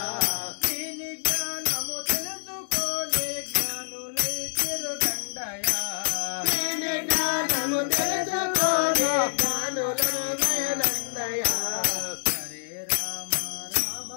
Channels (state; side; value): silent; right; digital silence